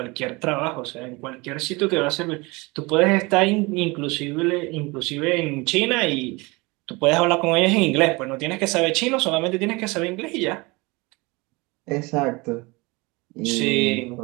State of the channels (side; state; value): left; quieter; 25.1 dB